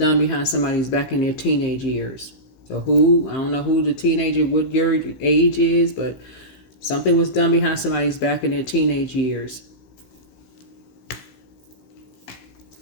behind somebody's back in their teenage years. So I don't know who the teenager, what your age is, but something was done behind somebody's back in their teenage years.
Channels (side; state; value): right; late; 15 ms